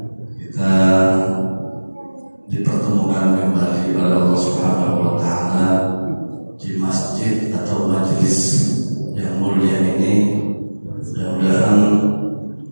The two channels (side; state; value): both; inverted; correlation -1.00